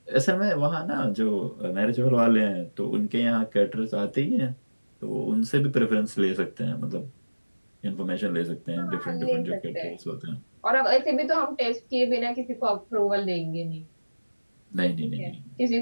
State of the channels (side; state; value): both; inverted; correlation -1.00